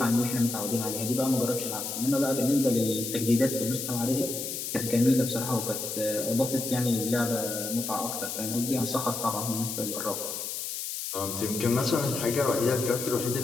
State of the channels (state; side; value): noise; left; hiss, 5 dB below the sound